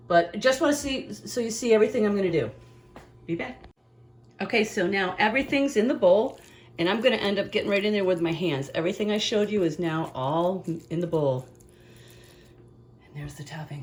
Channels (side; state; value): both; identical; correlation 1.00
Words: But just want to see, so you see everything I'm going to do. Be back. Okay, so now everything's in the bowl, and I'm going to end up getting right in there with my hands. Everything I showed you is now all in the bowl. And there's the